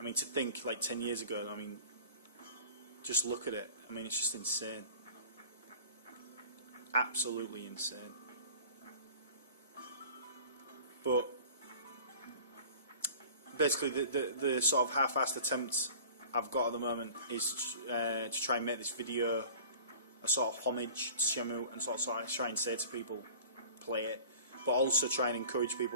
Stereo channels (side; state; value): both; inverted; correlation -0.44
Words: mean, to think like 10 years ago, I mean, just look at it. I mean, it's just insane. Absolutely insane. But basically the sort of half-assed attempt I've got at the moment is to try and make this video a sort of homage to Shenmue and sort of try and say to people, play it, but also try and encourage